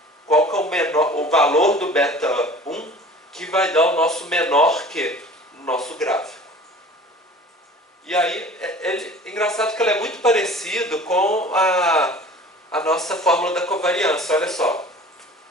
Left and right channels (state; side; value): normal; both; correlation 0.44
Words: qual que é o valor do beta 1 que vai dar o nosso menor Q no nosso gráfico. E aí, é engraçado que ele é muito parecido com a nossa fórmula da covariância. Olha só,